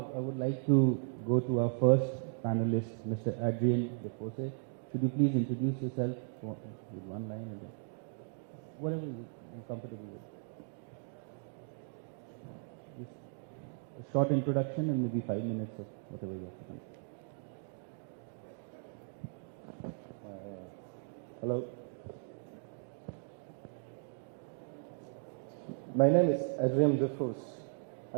I would like to go to our first panelist, Mr. Adrien Defosse. Could you please introduce yourself with one line and then whatever you're comfortable with. Just a short introduction and maybe 5 minutes of whatever you have to control. Hello. My name is Adrien Defosse.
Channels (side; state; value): left; silent; digital silence